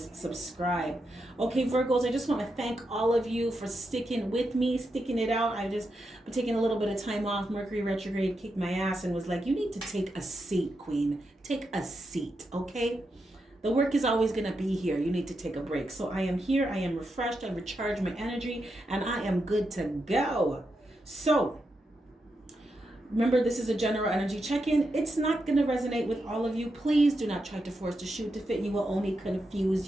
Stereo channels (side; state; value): both; normal; correlation 0.85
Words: subscribe. Okay, Virgos, I just want to thank all of you for sticking with me, sticking it out. I've just been taking a little bit of time off. Mercury retrograde kicked my ass and was like, you need to take a seat, Queen. Take a seat, okay? The work is always going to be here. You need to take a break. So I am here. I am refreshed. I recharged my energy and I am good to go. So remember, this is a general energy check-in. It's not going to resonate with all of you. Please do not try to force the shoe to fit. You will only